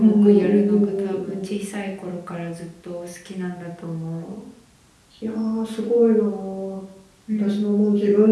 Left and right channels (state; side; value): identical; both; correlation 1.00